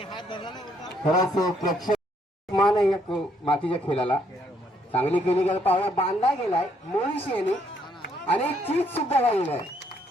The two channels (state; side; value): normal; both; correlation 0.70